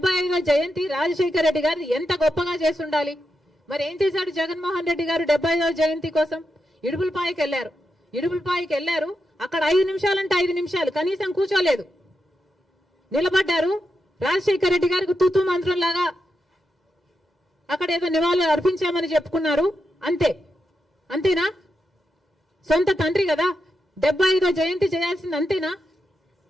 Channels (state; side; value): normal; both; correlation 0.86